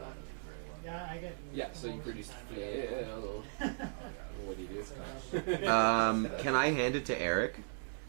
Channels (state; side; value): silent; left; digital silence